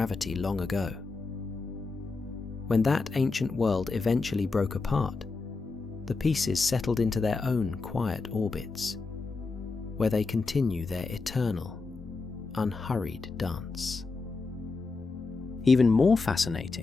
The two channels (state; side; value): quieter; right; 4.0 dB